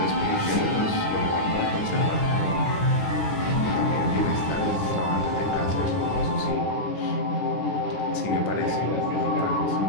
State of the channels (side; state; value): right; late; 10 ms